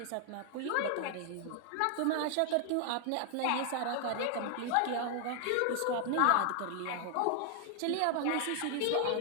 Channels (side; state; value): both; different; correlation 0.00